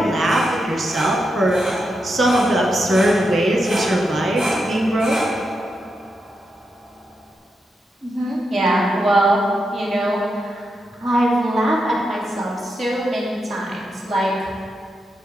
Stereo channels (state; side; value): normal; both; correlation 0.85